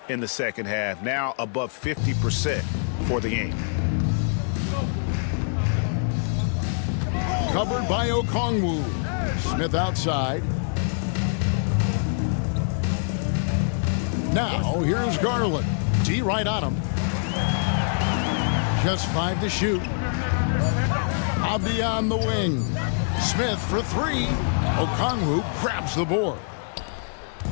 in the second half. Now above 50% for the game. Covered by Okongwu. Smith outside. Now, here's Garland. D right on him. Just 5 to shoot. Abdi on the wing. Smith for 3. Okongwu grabs the board.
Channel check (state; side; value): silent; right; digital silence